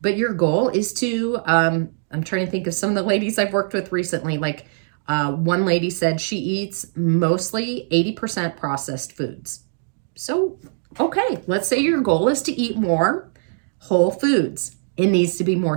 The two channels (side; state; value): left; silent; digital silence